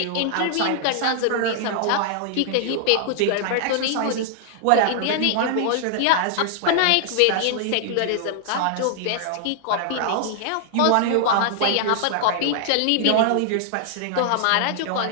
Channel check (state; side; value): different; both; correlation -0.01